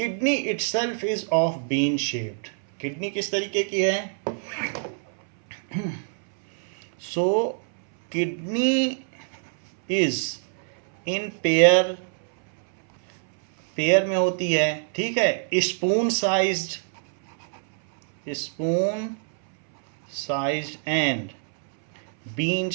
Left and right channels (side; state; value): left; silent; 62 dB below the other